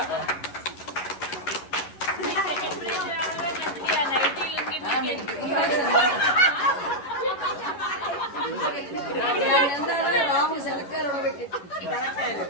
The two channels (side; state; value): right; late; 11 ms